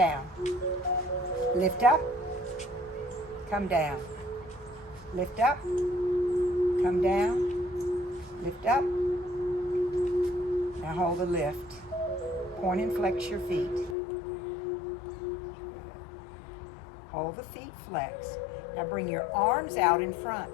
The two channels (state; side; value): drops out; right; at 14.0 s